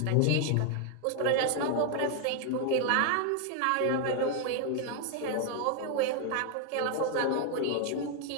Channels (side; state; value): both; different; correlation 0.00